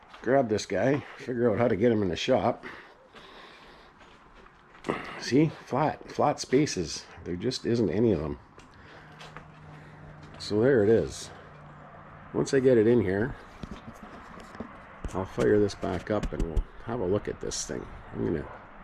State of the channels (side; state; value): both; identical; correlation 1.00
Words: grab this guy, figure out how to get him in the shop. See, flat spaces. There just isn't any of them. So there it is. Once I get it in here, I'll fire this back up and we'll have a look at this thing. I'm gonna